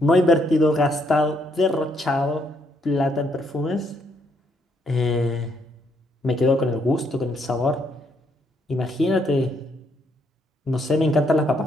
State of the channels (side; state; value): both; normal; correlation 0.72